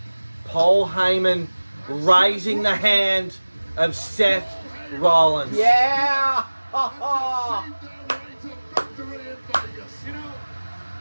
Paul Heyman raising the hand of Seth Rollins. Yeah. Ha ha. Their way to victory in Vegas. You know,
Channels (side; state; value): both; inverted; correlation -1.00